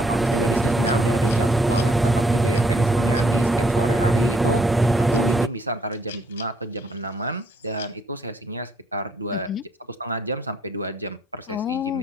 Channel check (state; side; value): normal; both; correlation 0.68